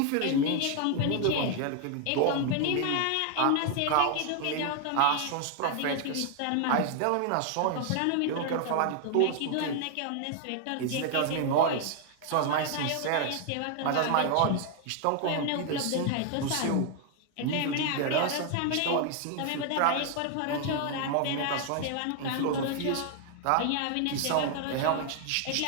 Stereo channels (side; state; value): both; different; correlation 0.00